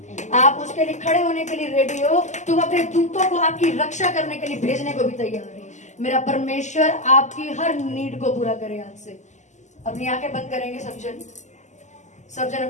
आप उसके लिए खड़े होने के लिए रेडी हो, तो अपने दूतों को आपकी रक्षा करने के लिए भेजने को भी तैयार है। मेरा परमेश्वर आपकी हर नीड को पूरा करे। आज से अपनी आंखें बंद करेंगे सब जन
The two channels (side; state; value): right; late; 0.34 ms